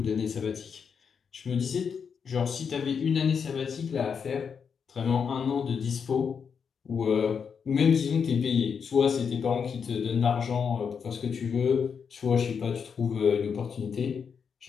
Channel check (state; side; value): quieter; right; 6.5 dB